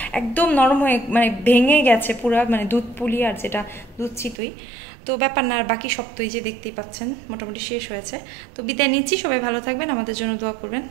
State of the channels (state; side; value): drops out; left; at 4.4 s